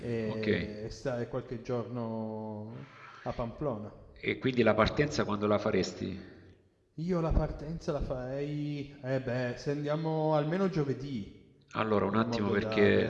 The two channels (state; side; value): identical; both; correlation 1.00